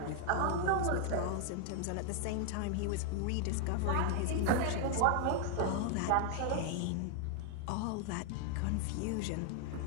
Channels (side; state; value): both; different; correlation 0.00